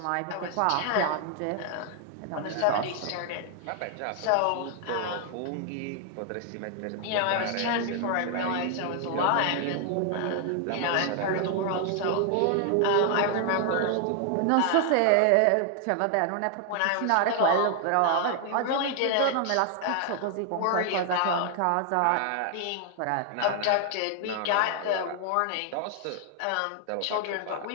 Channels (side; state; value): both; different; correlation 0.00